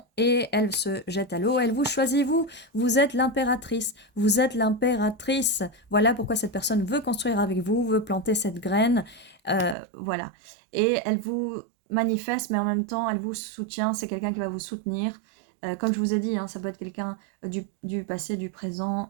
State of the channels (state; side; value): drops out; left; at 9.8 s